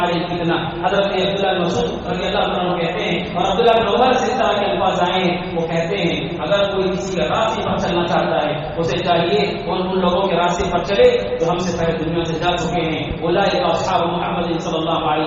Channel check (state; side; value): identical; both; correlation 1.00